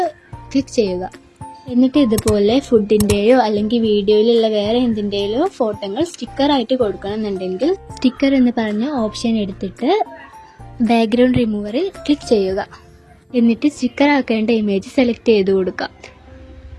ക്ലിക്ക് ചെയ്യുക. എന്നിട്ട് ഇതുപോലെ ഫുഡിൻ്റെയോ അല്ലെങ്കിൽ വീഡിയോയിലുള്ള വേറെ എന്തിൻ്റെയോ ഫോട്ടോകൾ സ്റ്റിക്കറായിട്ട് കൊടുക്കണമെന്നുണ്ടെങ്കിൽ സ്റ്റിക്കർ എന്ന് പറഞ്ഞ ഓപ്ഷൻ എടുത്തിട്ട് ബാക്ക്ഗ്രൗണ്ട് റിമൂവറിൽ ക്ലിക്ക് ചെയ്യുക. എന്നിട്ട് സ്റ്റിക്കർ ആക്കേണ്ട ഇമേജ് സെലക്ട് ചെയ്ത് കൊടുക്കുക.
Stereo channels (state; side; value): identical; both; correlation 1.00